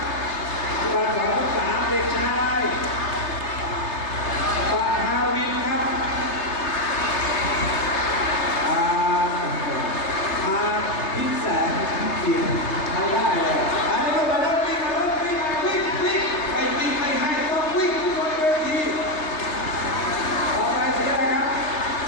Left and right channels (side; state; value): right; late; 3.3 ms